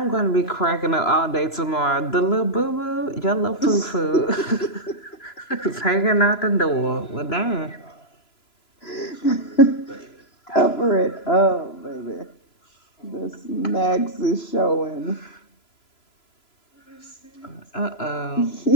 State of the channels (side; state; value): right; late; 3.0 ms